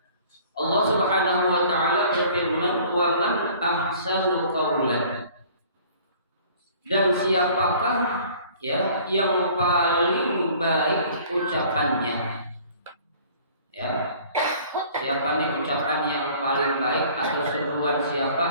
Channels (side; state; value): both; inverted; correlation -0.51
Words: Allah Subhanahu wa taala berfirman, "Wa man ahsanu qawlan." Dan siapakah yang paling baik ucapannya? Ya. Siapa nih ucapan yang paling baik atau seruan